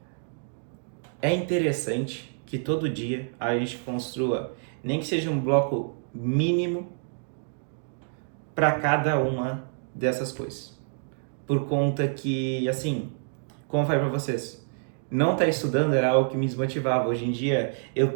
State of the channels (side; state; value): left; silent; digital silence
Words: é interessante que todo dia a gente construa, nem que seja um bloco mínimo para cada uma dessas coisas. Por conta que, assim, como eu falei para vocês, não estar estudando era algo que me desmotivava. Hoje em dia, eu